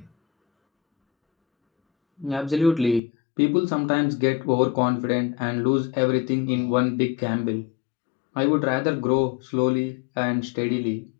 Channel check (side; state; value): right; drops out; at 3.0 s